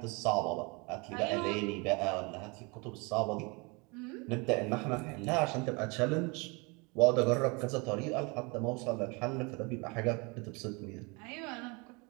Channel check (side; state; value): left; quieter; 29.3 dB